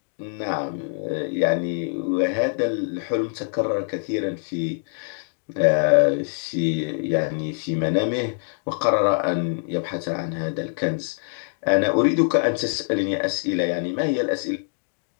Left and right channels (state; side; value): silent; right; 62 dB below the other